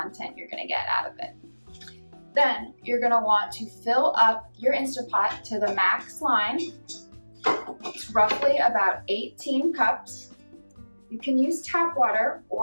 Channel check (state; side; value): inverted; both; correlation -1.00